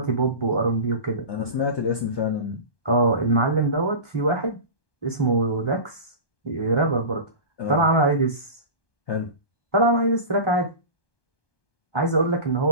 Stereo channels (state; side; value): late; right; 1.2 ms